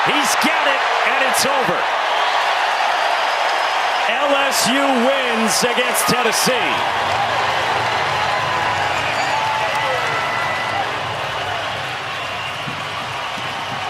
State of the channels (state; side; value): identical; both; correlation 1.00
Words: He's got it, and it's over. LSU wins against Tennessee.